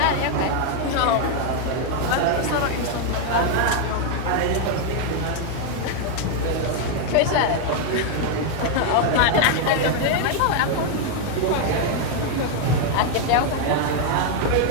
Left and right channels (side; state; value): both; different; correlation 0.00